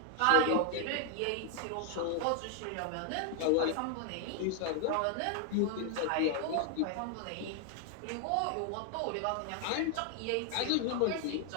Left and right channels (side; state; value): both; different; correlation 0.00